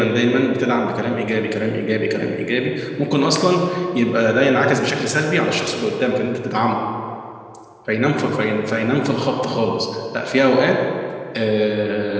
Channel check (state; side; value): identical; both; correlation 1.00